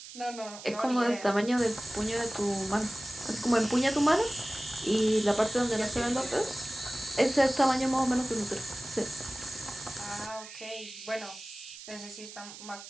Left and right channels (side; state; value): right; noise; hiss, 14 dB below the sound